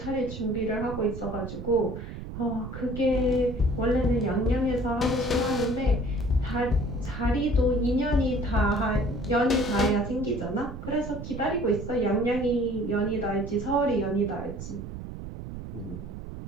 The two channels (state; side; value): noise; right; rumble, 9 dB below the sound